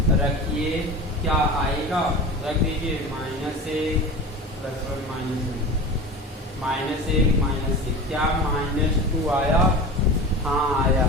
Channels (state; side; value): normal; both; correlation 0.32